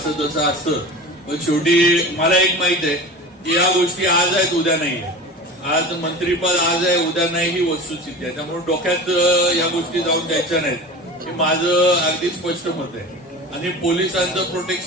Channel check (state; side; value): normal; both; correlation 0.34